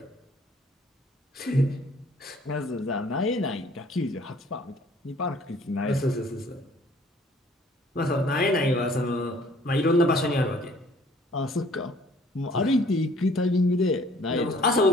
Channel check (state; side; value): normal; both; correlation 0.57